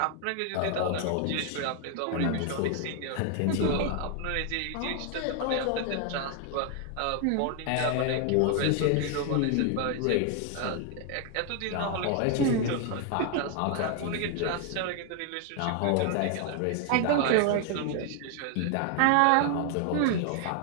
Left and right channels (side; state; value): both; different; correlation 0.00